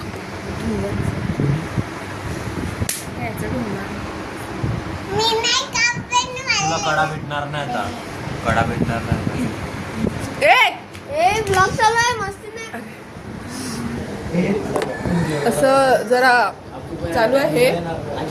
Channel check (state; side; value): identical; both; correlation 1.00